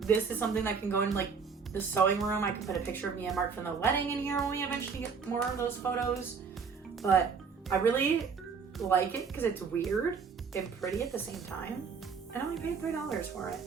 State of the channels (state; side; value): quieter; left; 5.7 dB